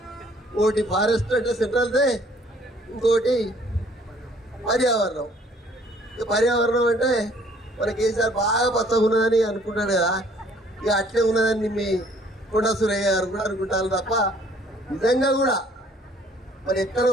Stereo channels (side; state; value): both; normal; correlation 0.59